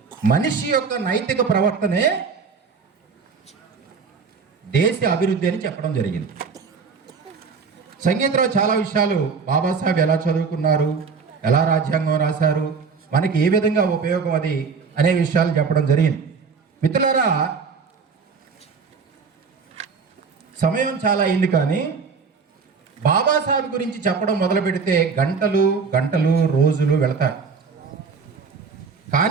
మనిషి యొక్క నైతిక ప్రవర్తనే దేశ అభివృద్ధి అని చెప్పడం జరిగింది. సంగీతంలో చాలా విషయాలు బాబాసాహెబ్ ఎలా చదువుకున్నారు, ఎలా రాజ్యాంగం రాశారు, మనకి ఏ విధంగా ఉపయోగం అది అనే విషయాలు చెప్పడం జరిగింది. మిత్రులారా, సమయం చాలా అయింది, కానీ బాబాసాహెబ్ గురించి చెప్పడం మొదలు పెడితే గంటలు గంటలు రోజులు వెళతాయి.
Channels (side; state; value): left; quieter; 5.4 dB